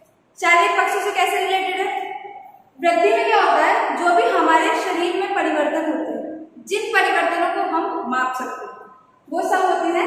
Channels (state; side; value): identical; both; correlation 1.00